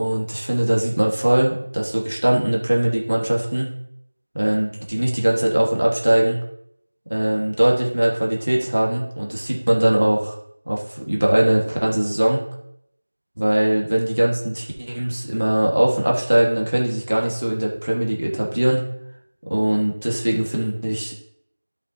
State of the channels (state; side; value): inverted; both; correlation -1.00